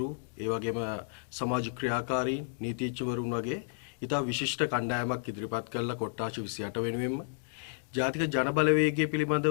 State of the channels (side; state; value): right; silent; digital silence